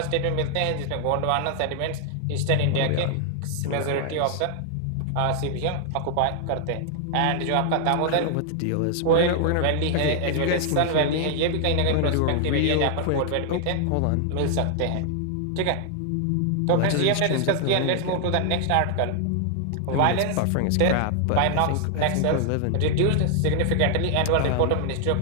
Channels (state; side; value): different; both; correlation 0.00